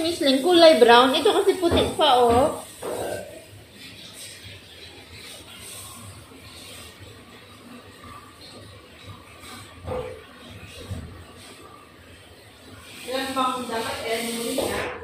Leng, kulay brown. Ito kasi puti pa, oh. Ilan bang dapat alam mo rin na?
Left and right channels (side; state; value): both; identical; correlation 1.00